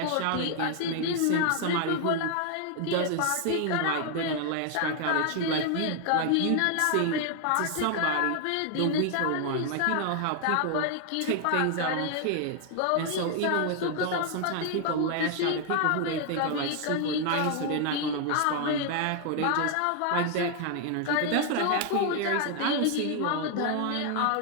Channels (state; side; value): different; both; correlation 0.00